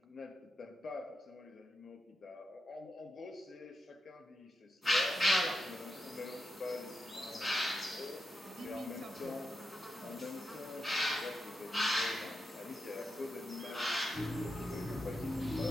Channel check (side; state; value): both; normal; correlation 0.86